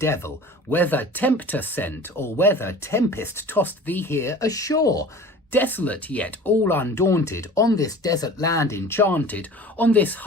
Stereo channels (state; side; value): normal; both; correlation 0.41